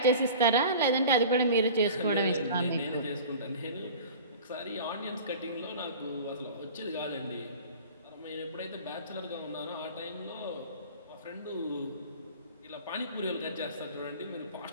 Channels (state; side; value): inverted; both; correlation -0.39